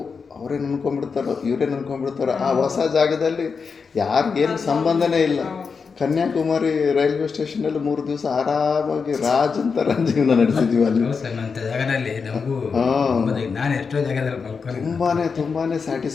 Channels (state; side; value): quieter; right; 5.4 dB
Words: ಅವರೇ ಅನ್ಕೊಂಡ್ಬಿಡ್ತಾರೋ ಇವರೇ ಅನ್ಕೊಂಡ್ಬಿಡ್ತಾರೋ. ಆ ಹೊಸ ಜಾಗದಲ್ಲಿ ಯಾರಿಗೇನು ಸಂಬಂಧನೇ ಇಲ್ಲ. ಕನ್ಯಾಕುಮಾರಿ ರೈಲ್ವೆ ಸ್ಟೇಷನಲ್ಲಿ 3 ದಿವಸ ಆರಾಮಾಗಿ ರಾಜ್ ಅಂತ ಜೀವನ ನಡೆಸಿದ್ವಿ ಅಲ್ಲಿ. ಜಾಗದಲ್ಲಿ ನಮಗೂ ನಾನು ಎಷ್ಟೋ ಜಾಗದಲ್ಲಿ ಮಲ್ಕೊಂಡು ತುಂಬಾ